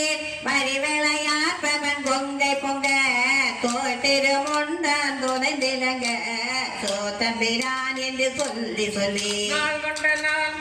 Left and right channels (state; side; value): identical; both; correlation 1.00